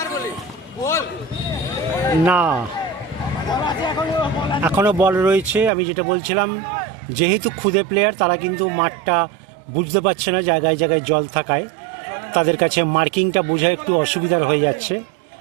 না এখনও বল রয়েছে। আমি যেটা বলছিলাম, যেহেতু খুদে প্লেয়ার তারা কিন্তু মাঠটা বুঝতে পারছে না, জায়গায় জায়গায় জল থাকায় তাদের কাছে মার্কিংটা বোঝা একটু অসুবিধার হয়ে যাচ্ছে।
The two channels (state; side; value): drops out; left; at 5.7 s